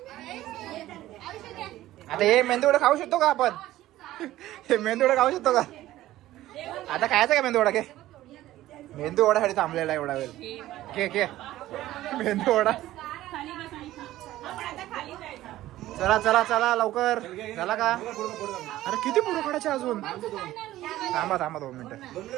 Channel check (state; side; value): quieter; left; 15.1 dB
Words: आता हे मेंदूवडा खाऊ शकतो का आपण? हे मेंदूवडा खाऊ शकतो का? आता खायचा का मेंदूवडा? घे, मेंदूवडासाठी थांबलेला एवढा वेळ. घे घे मेंदूवडा. चला चला चला लवकर. झाला का? अरे किती पुढे काढायचे अजून? थांबा थांबा 2 मिनिटं,